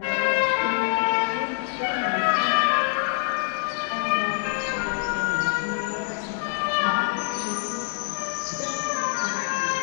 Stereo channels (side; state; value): right; silent; 62 dB below the other